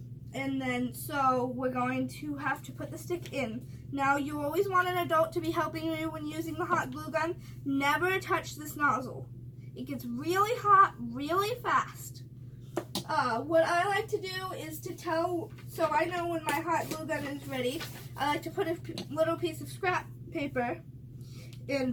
And then, so we're going to have to put the stick in. Now, you always want an adult to be helping you when using the hot glue gun. Never touch this nozzle. It gets really hot really fast. What I like to do is to tell, so I know when my hot glue gun is ready, I like to put a little piece of scrap paper.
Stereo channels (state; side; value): identical; both; correlation 1.00